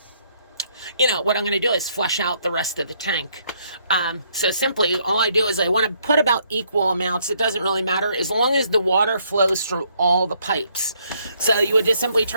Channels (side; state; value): both; inverted; correlation -0.70